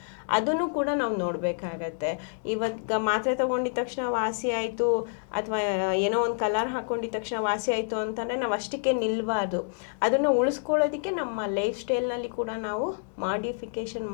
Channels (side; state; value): right; silent; digital silence